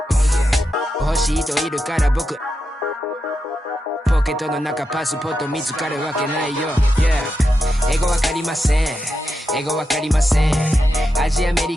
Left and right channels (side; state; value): both; normal; correlation 0.87